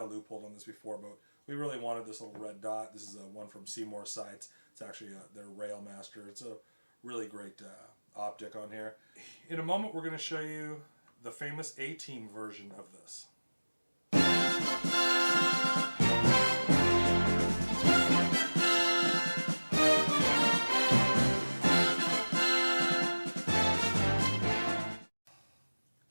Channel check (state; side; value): inverted; both; correlation -1.00